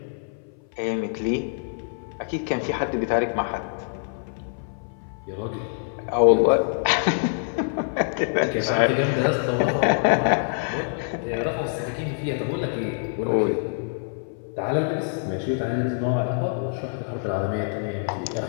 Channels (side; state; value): right; silent; 58 dB below the other